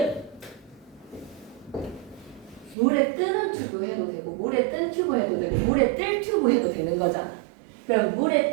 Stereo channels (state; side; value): drops out; left; at 2.8 s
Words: 물에 뜨는 튜브 해도 되고 물에 뜬 튜브 해도 되고 물에 뜰 튜브 해도 되는 거잖아. 그럼